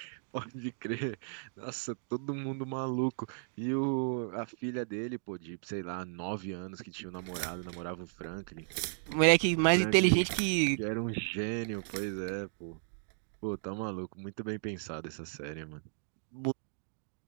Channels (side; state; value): left; silent; digital silence